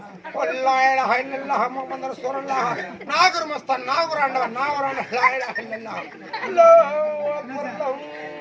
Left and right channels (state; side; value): identical; both; correlation 1.00